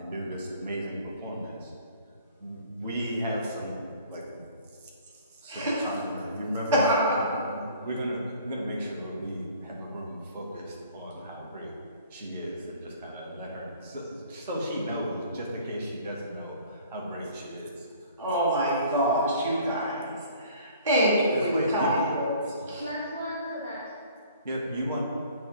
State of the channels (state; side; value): inverted; both; correlation -0.51